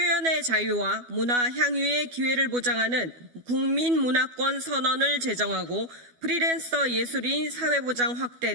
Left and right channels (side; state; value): left; late; 12 ms